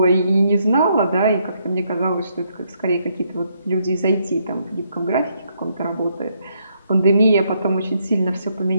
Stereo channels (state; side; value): inverted; both; correlation -0.74